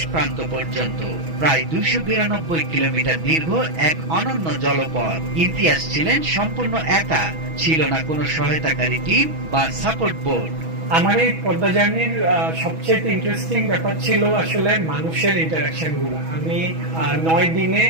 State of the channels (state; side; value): late; left; 6.2 ms